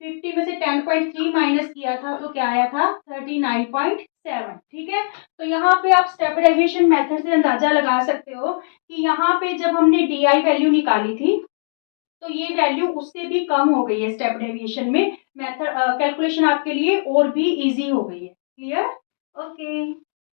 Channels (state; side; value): silent; right; digital silence